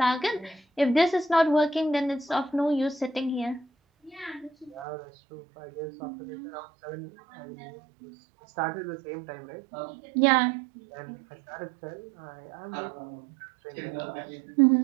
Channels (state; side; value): drops out; left; at 4.9 s